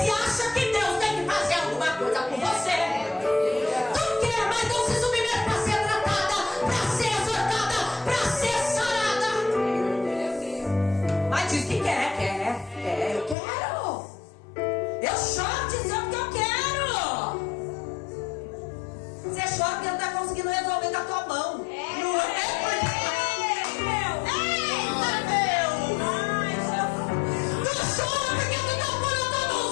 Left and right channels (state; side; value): drops out; right; at 13.4 s